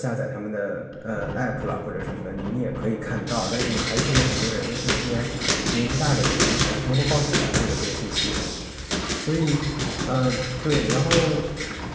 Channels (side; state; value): both; identical; correlation 1.00